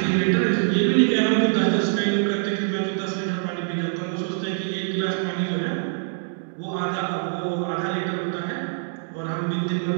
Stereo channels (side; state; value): left; silent; digital silence